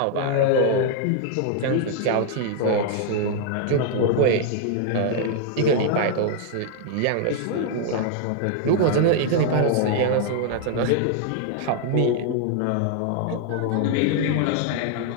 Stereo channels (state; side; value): different; both; correlation 0.00